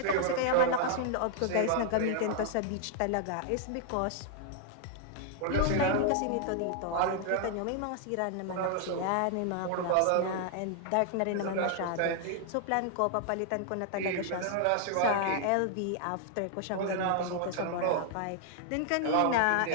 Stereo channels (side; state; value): both; different; correlation 0.00